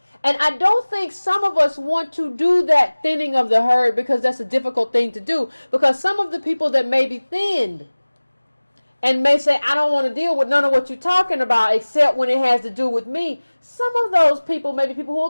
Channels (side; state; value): both; inverted; correlation -1.00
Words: And I don't think some of us want to do that thinning of the herd because that's a difficult thing to do. Because some of the people that may be thinned and may say, I don't want to deal with none of what you're talking about except when it has to do with me. Some of those people may be people who